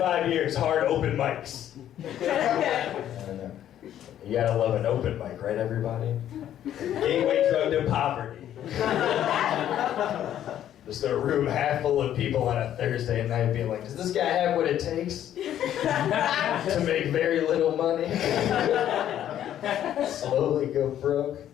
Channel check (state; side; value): quieter; right; 11.1 dB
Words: years, hard open mics. You gotta love an open mic, right, everybody? Gateway drug to poverty. Just a room half full of people on a Thursday night being like, does this guy have what it takes to make very little money? Slowly go broke?